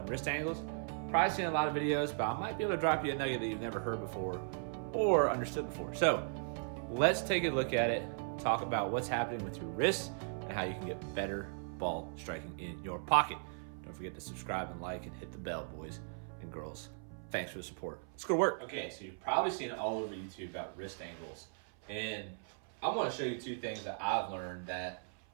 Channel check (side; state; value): left; silent; 53 dB below the other